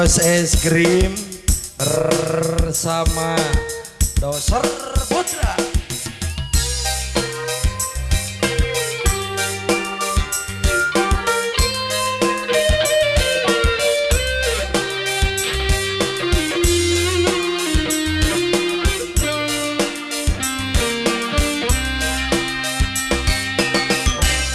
Es Krim sama Doser Putra.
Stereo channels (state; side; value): identical; both; correlation 1.00